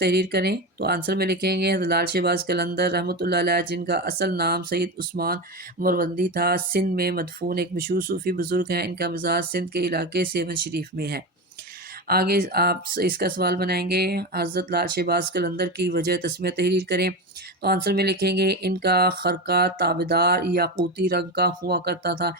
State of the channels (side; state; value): both; normal; correlation 0.19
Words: کریں۔ تو آنسر میں لکھیں گے حضرت لال شہباز قلندر رحمۃ اللہ علیہ، جن کا اصل نام سید عثمان مروندی تھا، سندھ میں مدفون ایک مشہور صوفی بزرگ ہیں۔ ان کا مزار سندھ کے علاقے سیون شریف میں ہے۔ آگے آپ اس کا سوال بنائیں گے، حضرت لال شہباز قلندر کی وجہ تسمیہ تحریر کریں۔ تو آنسر میں لکھیں گے ان کا خرقہ تابدار یاقوتی رنگ کا ہوا کرتا تھا،